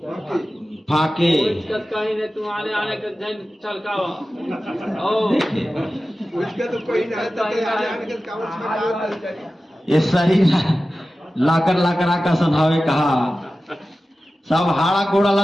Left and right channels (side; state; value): both; normal; correlation 0.95